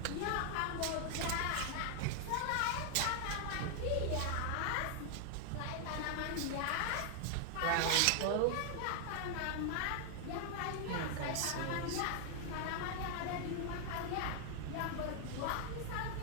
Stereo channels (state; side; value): different; both; correlation 0.00